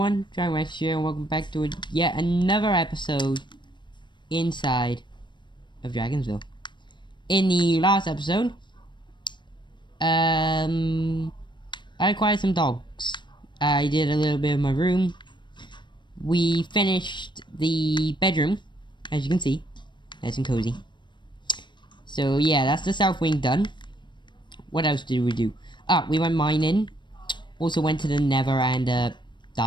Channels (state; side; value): late; right; 0.22 ms